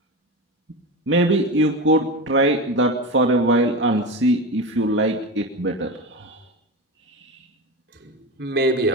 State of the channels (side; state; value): both; normal; correlation 0.23